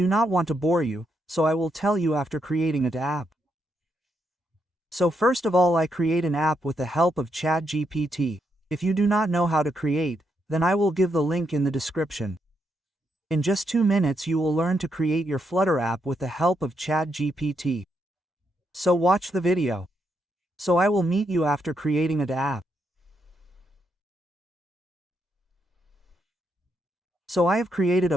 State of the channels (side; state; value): both; normal; correlation 0.79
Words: not want to bore you, so I will tell you after creating an app. So first of all I create an app with the help of ChatGPT. If you do not know how to create, then I will give the link in the description. In just 2 minutes you will learn to create your Flutter app with the help of ChatGPT. So watch the video. So I will meet you after creating an app. So I have created a